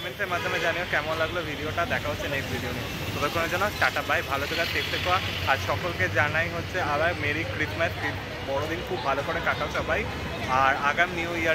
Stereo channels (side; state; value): both; identical; correlation 1.00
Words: মাধ্যমে জানিও কেমন লাগলো ভিডিওটা। দেখা হচ্ছে নেক্সট ভিডিও নিয়ে। ততক্ষণের জন্য টাটা বাই, ভালো থেকো, সেফ থেকো। আর সকলকে জানাই হচ্ছে আবার মেরি ক্রিসমাস, বড়দিন খুব ভালো করে কাটাও সবাই। আর আগাম নিউ